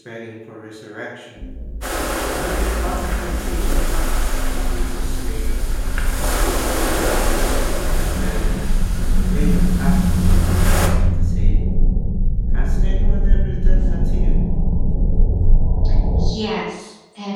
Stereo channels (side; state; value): both; identical; correlation 1.00